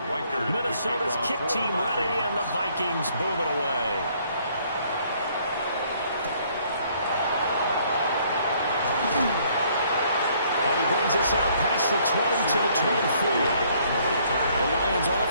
Riker, Minnesota's kick team ready, and the Vikings boom it away. And he brings us out past the 20 to the 24. The Lions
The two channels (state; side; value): inverted; both; correlation -0.64